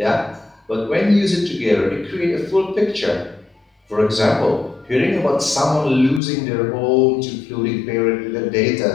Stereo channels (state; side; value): drops out; right; at 6.2 s